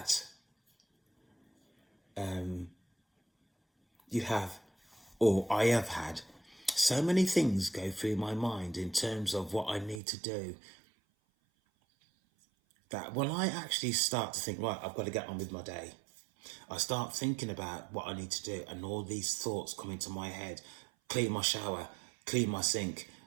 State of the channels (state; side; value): drops out; left; at 10.0 s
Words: I have had so many things go through my mind in terms of what I need to do. that when I actually start to think, right, I've got to get on with my day, I start thinking about what I need to do, and all these thoughts come into my head: clean my shower, clean my sink,